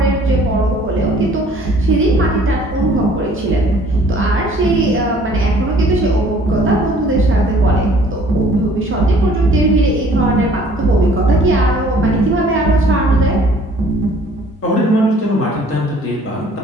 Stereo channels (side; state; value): both; normal; correlation 0.55